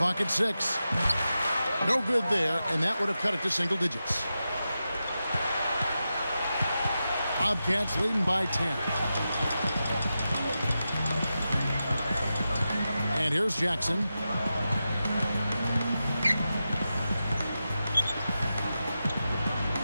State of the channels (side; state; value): both; inverted; correlation -0.91